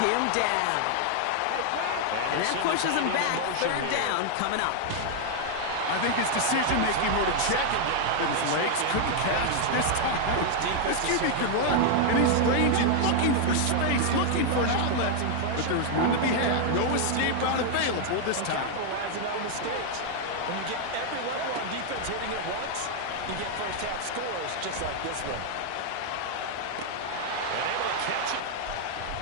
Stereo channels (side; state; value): both; different; correlation 0.00